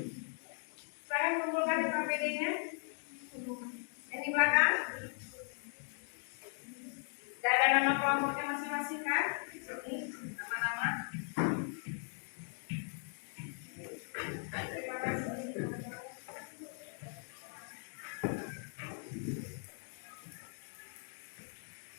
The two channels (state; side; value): silent; right; 52 dB below the other